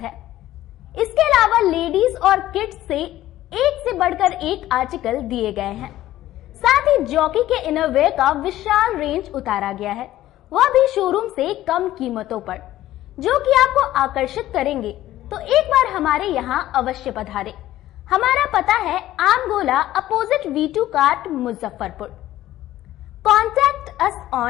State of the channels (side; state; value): right; quieter; 14.4 dB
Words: इसके अलावा लेडीज और किड्स से एक से बढ़कर एक आर्टिकल दिए गए हैं। साथ ही जॉकी के इनरवेयर का विशाल रेंज उतारा गया है, वह भी शोरूम से कम कीमतों पर, जो कि आपको आकर्षित करेंगे। तो एक बार हमारे यहाँ अवश्य पधारे। हमारा पता है आम गोला, opposite V2 cart, Muzaffarpur. Contact us